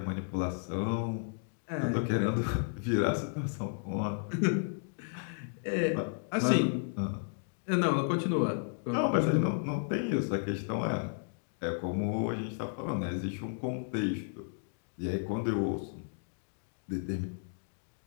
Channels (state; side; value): silent; right; digital silence